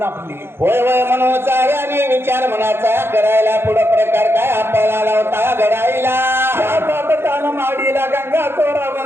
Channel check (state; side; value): late; left; 0.11 ms